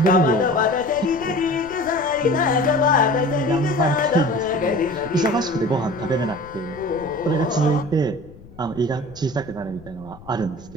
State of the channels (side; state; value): left; noise; rumble, 20 dB below the sound